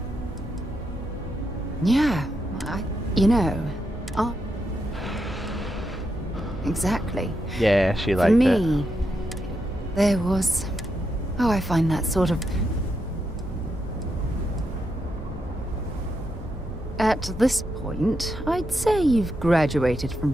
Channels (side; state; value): both; normal; correlation 0.83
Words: Yeah, you know... Exactly. Yeah, she liked it. For me, there was... Oh, I find that sort of... At this point, I'd say you've graduated from